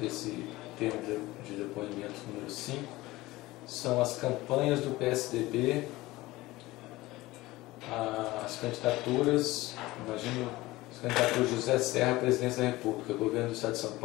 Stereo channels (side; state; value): right; quieter; 19.0 dB